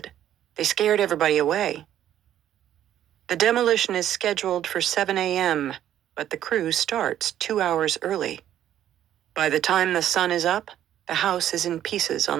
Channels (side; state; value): left; quieter; 11.3 dB